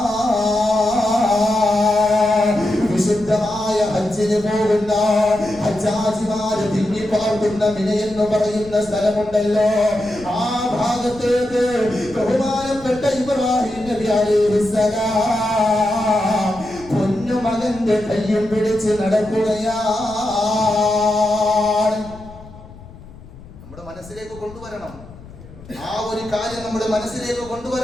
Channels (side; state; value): left; noise; rumble, 19 dB below the sound